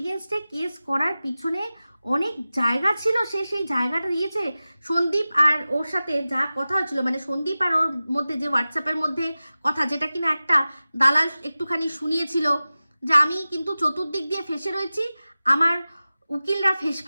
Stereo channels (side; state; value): both; inverted; correlation -0.96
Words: কেস করার পিছনে অনেক জায়গা ছিল, সে সেই জায়গাটা দিয়েছে। সন্দীপ আর ওর সাথে যা কথা হচ্ছিল, মানে সন্দীপ আর ওর মধ্যে যে হোয়াটসঅ্যাপের মধ্যে কথা, যেটা কিনা একটা দালাল একটুখানি শুনিয়েছিল, যে আমি কিন্তু চতুর্দিক দিয়ে ফেসে রয়েছি, আমার উকিলরা